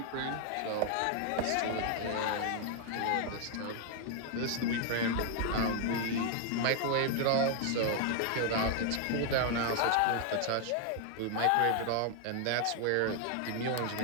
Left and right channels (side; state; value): both; different; correlation 0.00